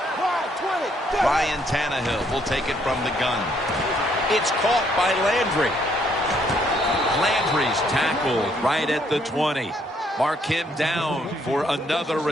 Ryan Tannehill will take it from the gun. It's caught by Landry. Landry's tackled right at the 20. Mark him down for another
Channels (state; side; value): normal; both; correlation 0.69